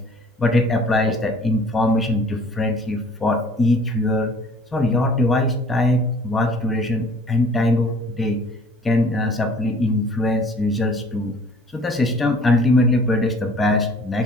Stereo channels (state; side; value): normal; both; correlation 0.51